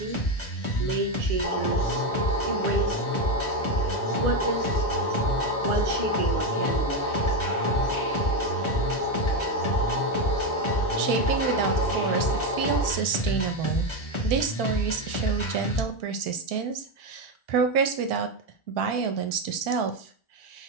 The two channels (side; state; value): right; late; 1.4 ms